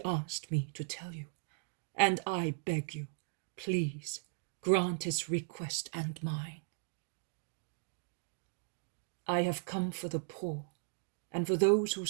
asked me to tell you, and I beg you, please, grant his request and mine. I have come for the poor, and for those who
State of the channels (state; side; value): silent; left; digital silence